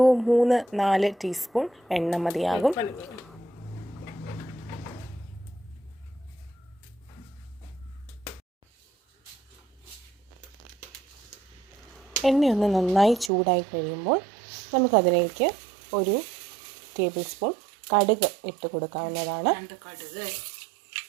3-4 ടീസ്പൂൺ എണ്ണ മതിയാകും. എണ്ണയൊന്ന് നന്നായി ചൂടായി കഴിയുമ്പോൾ നമുക്കതിലേക്ക് ഒരു ടേബിൾ സ്പൂൺ കടുക് ഇട്ട് കൊടുക്കാവുന്നതാണ്.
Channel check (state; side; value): drops out; left; at 13.3 s